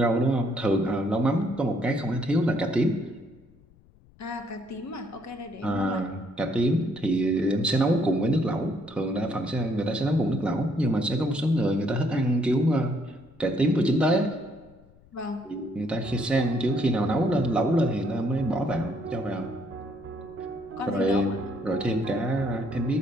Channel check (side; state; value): left; noise; rumble, 28 dB below the sound